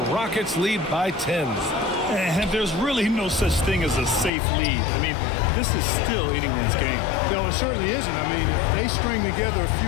Rockets lead by 10. And there's really no such thing as a safe lead. I mean, this is still anyone's game. No, it certainly isn't. I mean, if they string together a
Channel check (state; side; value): drops out; right; at 4.3 s